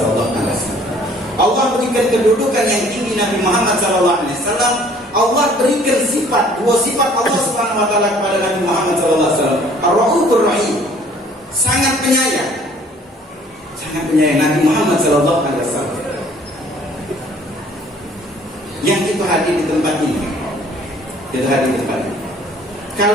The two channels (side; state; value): both; normal; correlation 0.56